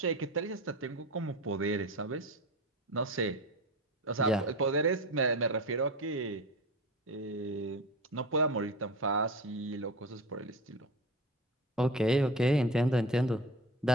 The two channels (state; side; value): normal; both; correlation 0.29